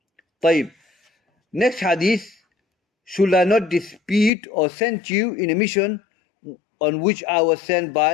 Tayyib. Next hadith, should I not dispute or send you in a mission on which I was sent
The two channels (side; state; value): right; drops out; at 4.3 s